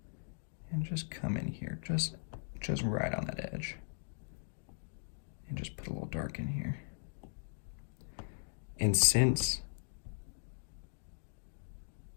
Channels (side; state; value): right; silent; digital silence